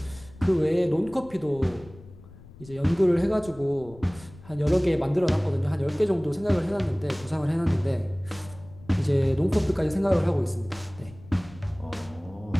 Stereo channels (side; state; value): left; noise; rumble, 21 dB below the sound